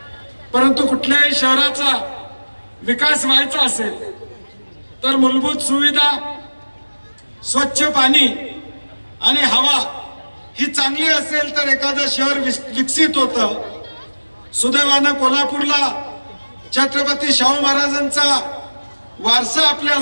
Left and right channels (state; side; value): inverted; both; correlation -1.00